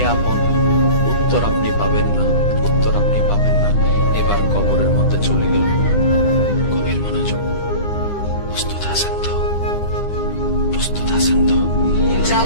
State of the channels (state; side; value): late; right; 9.8 ms